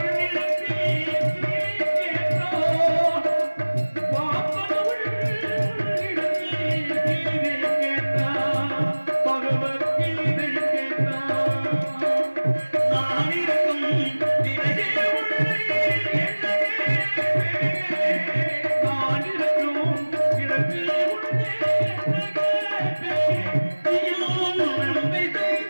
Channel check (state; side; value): inverted; both; correlation -1.00